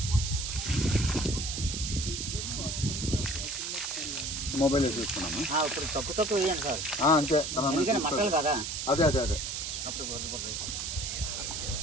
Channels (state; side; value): noise; right; hiss, 4 dB below the sound